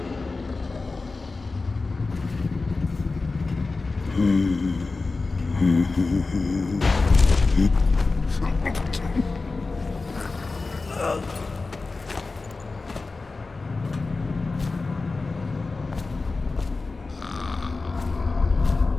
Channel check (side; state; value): right; quieter; 3.8 dB